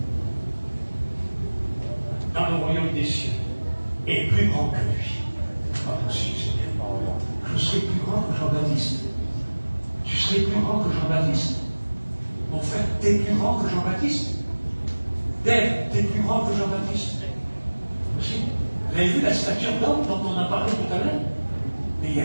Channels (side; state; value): both; inverted; correlation -1.00